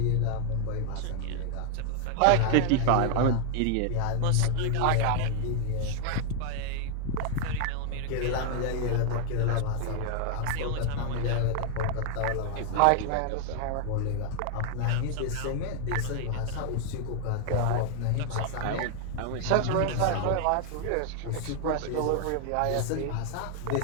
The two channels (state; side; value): different; both; correlation 0.00